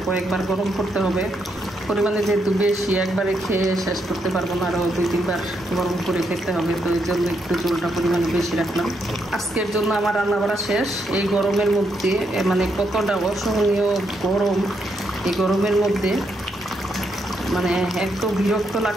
কয়েকবার গরম করতে হবে। পরিমাণে যেহেতু বেশি, একবারে খেয়ে শেষ করতে পারবো না, আরও 2-3 বার গরম করে খেতে হবে। তো এই জন্য একটু ঝোলটা পরিমাণে বেশি রাখলাম। আজকের জন্য আমার রান্না বাড়া শেষ। এই গরমের মধ্যে মানে কতটা অসহনীয় গরম, এই গরমের মধ্যে মানে এত বিরক্ত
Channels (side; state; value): both; normal; correlation 0.79